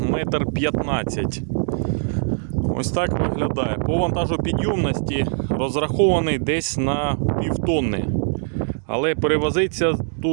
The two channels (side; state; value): left; silent; 61 dB below the other